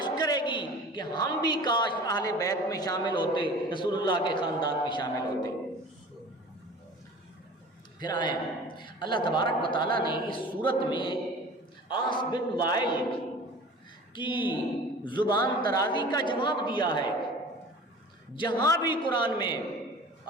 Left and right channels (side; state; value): both; normal; correlation 0.41